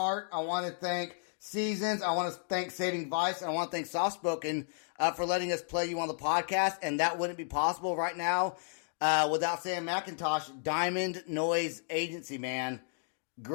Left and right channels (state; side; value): silent; right; digital silence